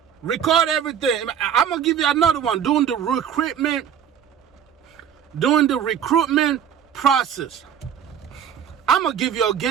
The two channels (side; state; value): left; quieter; 8.6 dB